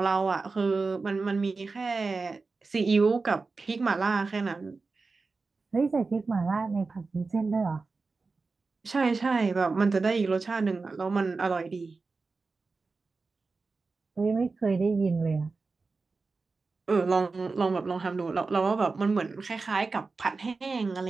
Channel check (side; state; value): left; quieter; 4.1 dB